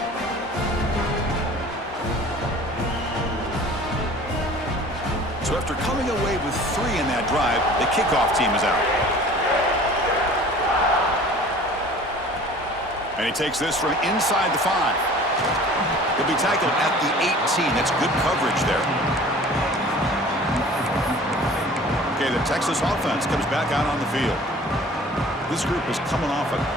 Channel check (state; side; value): normal; both; correlation 0.46